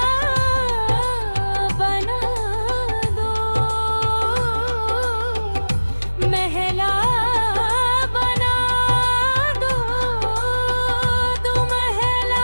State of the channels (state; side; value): inverted; both; correlation -1.00